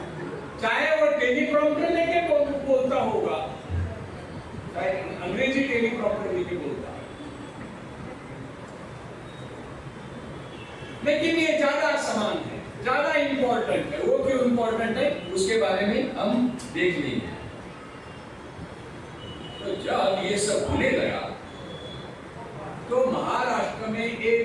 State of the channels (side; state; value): both; identical; correlation 1.00